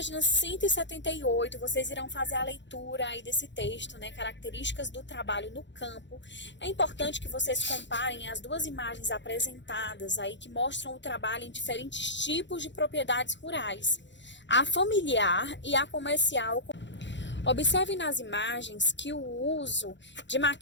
178, vocês irão fazer a leitura aí desse texto, né? Características do trabalho no campo. É importante que vocês comparem as duas imagens apresentadas aí que mostram o trabalho em diferentes tipos de propriedades rurais, a familiar e a comercial. Observe nas imagens que o uso de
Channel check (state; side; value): late; right; 0.53 ms